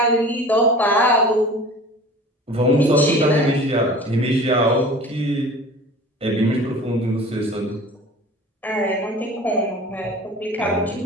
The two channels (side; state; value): both; normal; correlation 0.41